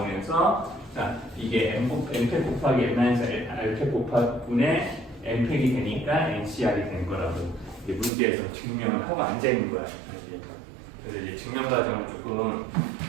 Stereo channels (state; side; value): drops out; left; at 8.1 s